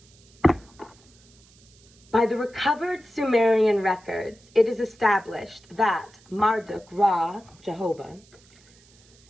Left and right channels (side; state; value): right; noise; hiss, 28 dB below the sound